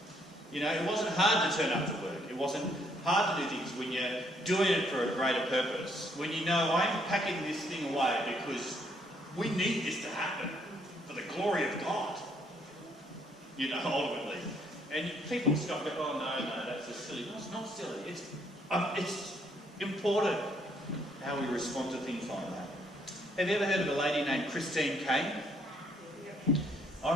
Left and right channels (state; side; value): normal; both; correlation 0.68